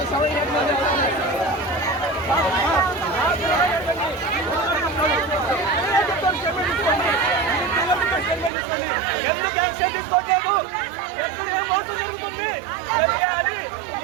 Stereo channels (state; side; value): drops out; left; at 8.5 s